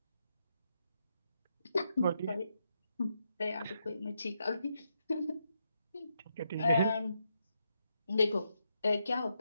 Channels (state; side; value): inverted; both; correlation -0.81